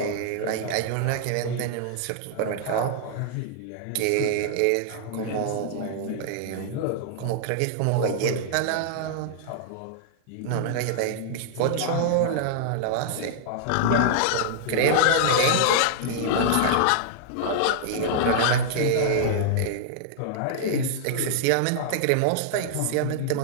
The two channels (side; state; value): both; different; correlation -0.01